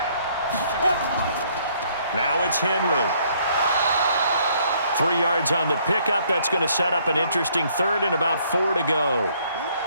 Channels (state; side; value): inverted; both; correlation -0.65